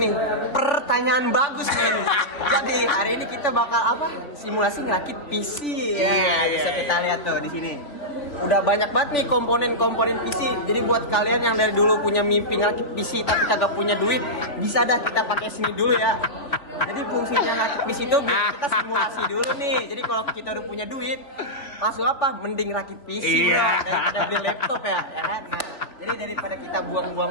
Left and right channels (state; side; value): late; right; 3.3 ms